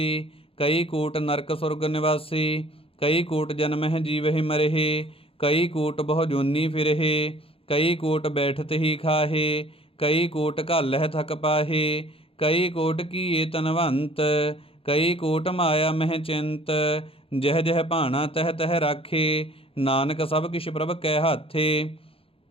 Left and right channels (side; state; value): right; late; 0.27 ms